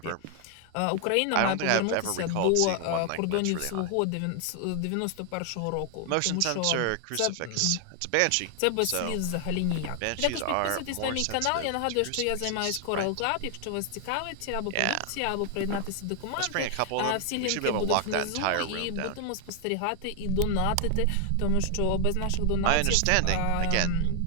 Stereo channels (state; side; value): different; both; correlation 0.00